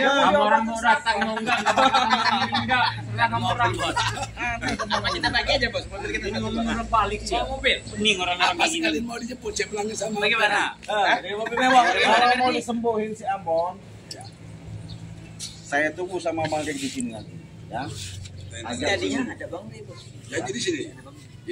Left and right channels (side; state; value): both; identical; correlation 1.00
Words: Kamu orang mau datang mau enggak enggak. Enggak kamu orang. Apa kita bagi aja, Bos? Mobil kita Ini ngomong balik sih. mobil. Pening orang-orang Apa kayak gini. sekalian mau dijemput cepelangnya sama. Bagaimana? Dari mobil mewah. Kalau mau disembuhin si Ambon, saya tunggu sama Bang Ri di sini nanti. Ya. Jadinya ada Bang Ray, Bos. Jadi di sini.